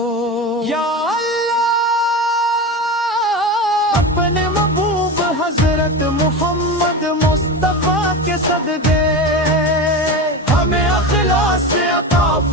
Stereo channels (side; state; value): both; normal; correlation 0.24